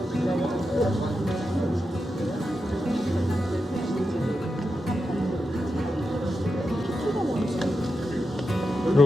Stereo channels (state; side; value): normal; both; correlation 0.88